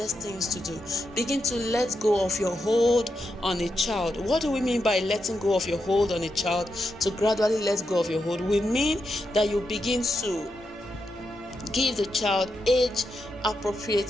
things to do. Begin to let go of your hold on a child. What do we mean by letting go of your hold on a child? To gradually let go of your hold, we mean that you begin to give the child age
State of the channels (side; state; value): both; normal; correlation 0.85